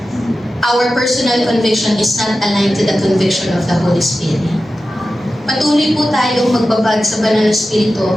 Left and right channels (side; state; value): both; normal; correlation 0.93